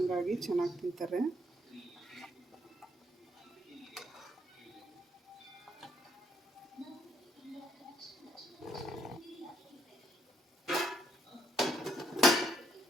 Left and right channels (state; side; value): normal; both; correlation 0.71